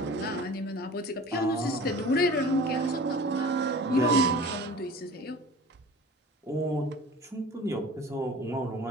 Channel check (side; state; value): both; normal; correlation 0.41